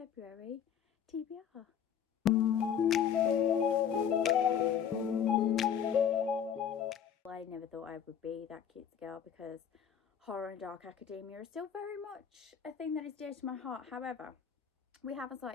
TBR. I never thought I would be that cute girl because horror and dark academia is still very much a thing that is dear to my heart. However, we have a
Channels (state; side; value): quieter; right; 8.4 dB